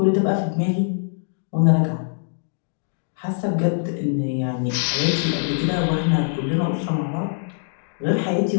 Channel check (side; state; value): right; silent; digital silence